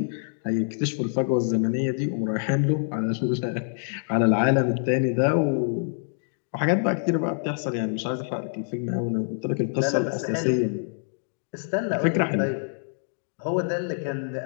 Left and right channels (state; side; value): silent; right; digital silence